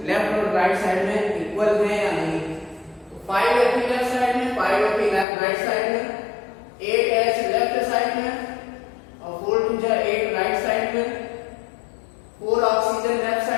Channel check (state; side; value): drops out; right; at 5.2 s